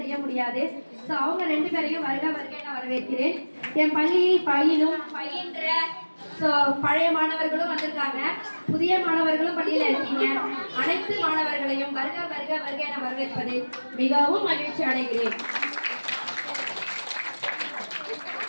முடியாது. ஸோ அவங்க 2 பேரையும் வருக வருக நான் வரவேற்கிறேன். என் பள்ளியில் பயின்ற பழைய மாணவர்களும் வந்திருக்காங்க, புதிய மாணவர்களும் பள்ளியில இருக்கீங்க. அனைத்து மாணவர்களையும் வருக வருக வருக என வரவேற்பதில் மிகவும் மகிழ்ச்சி அடைகிறேன்.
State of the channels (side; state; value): both; inverted; correlation -1.00